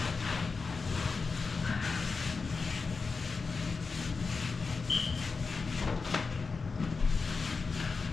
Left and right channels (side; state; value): right; quieter; 4.5 dB